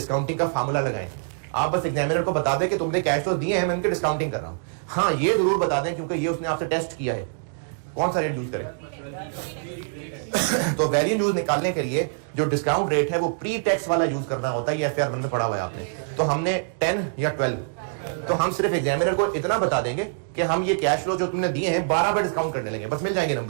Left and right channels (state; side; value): silent; left; digital silence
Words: का फार्मूला लगाएं। आप बस एग्जामिनर को बता दें कि तुमने कैश फ्लोज दिए हैं, मैं उनकी डिस्काउंटिंग कर रहा हूं। हाँ, ये जरूर बता दें क्योंकि ये उसने आपसे टेस्ट किया है, कौन सा रेट यूज करें। तो वैल्यू यूज निकालने के लिए जो डिस्काउंट रेट है वो प्री टैक्स वाला यूज करना होता है। ये FR 1 में पढ़ा हुआ है आपने। तो हमने 10 या 12, तो हम सिर्फ एग्जामिनर को इतना बता देंगे कि हम ये कैश फ्लो जो तुमने दिए हैं 12 पर डिस्काउंट करने लगे, बस मिल जाएंगे